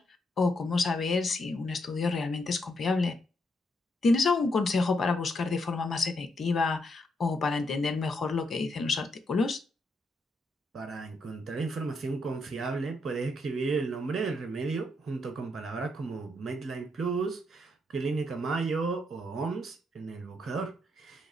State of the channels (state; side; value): normal; both; correlation 0.77